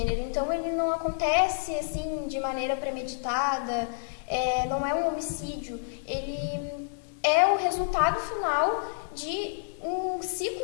então ele não acontece assim de maneira premeditada, não é um homicídio, ele é o resultado final de um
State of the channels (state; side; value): silent; right; 59 dB below the other